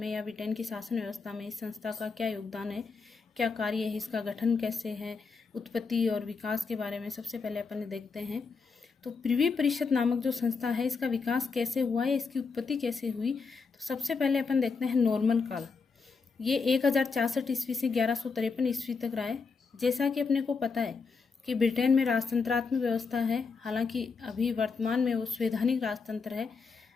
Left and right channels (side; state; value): right; quieter; 4.8 dB